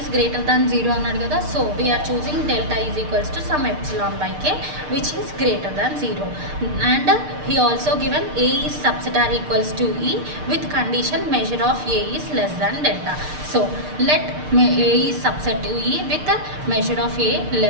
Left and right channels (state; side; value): late; left; 6.6 ms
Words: greater than 0 అన్నాడు కదా. So we are choosing delta is equals to some epsilon by k which is greater than 0. And he also given A is subset are equals to E with condition measure of A is less than delta. So let A is subset to E with measure of A